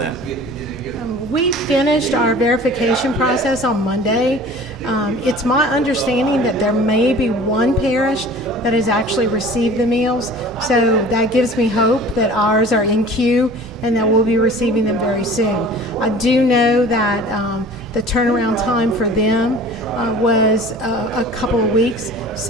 We finished our verification process on Monday. It's my understanding that there may be one parish that has actually received the meals, so that gives me hope that ours are in queue and that we'll be receiving them very soon. I do know that the turnaround time for them was a couple of weeks.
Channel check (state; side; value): normal; both; correlation 0.44